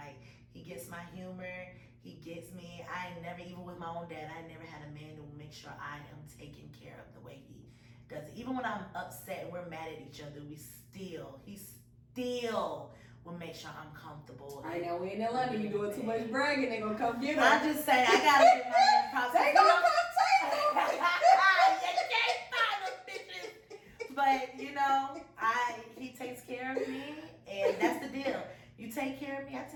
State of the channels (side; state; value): both; identical; correlation 1.00